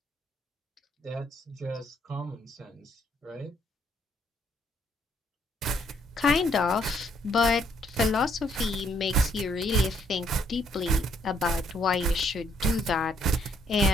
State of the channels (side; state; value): both; normal; correlation 0.70